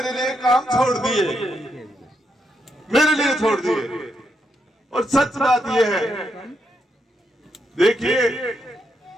लिए काम छोड़ दिए, मेरे लिए छोड़ दिए। और सच बात यह है, देखिए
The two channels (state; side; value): normal; both; correlation 0.80